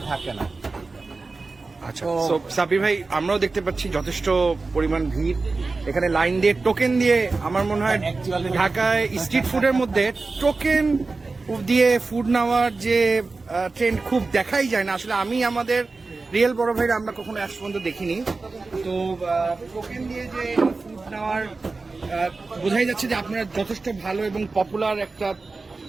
থাকেন না। আচ্ছা, তো সাব্বির ভাই আমরাও দেখতে পাচ্ছি যথেষ্ট পরিমাণ ভিড় এখানে, লাইন দিয়ে টোকেন দিয়ে। আমার মনে হয় ঢাকায় স্ট্রিট ফুডের মধ্যে টোকেন দিয়ে ফুড নেওয়ার যে ট্রেন্ড খুব দেখাই যায় না আসলে। আমি আমাদের রিয়েল বড় ভাইরা আমরা কখনো আজ পর্যন্ত দেখিনি। তো টোকেন দিয়ে যে ফুড নেওয়ার বোঝাই যাচ্ছে যে আপনারা যথেষ্ট ভালো এবং পপুলার একটা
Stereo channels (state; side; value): quieter; left; 3.8 dB